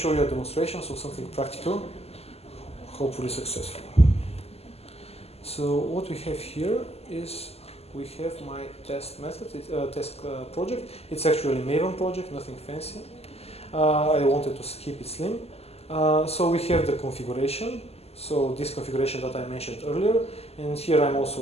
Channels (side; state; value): right; late; 0.29 ms